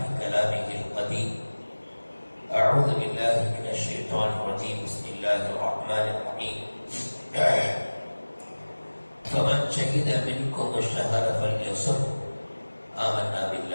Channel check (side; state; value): both; inverted; correlation -1.00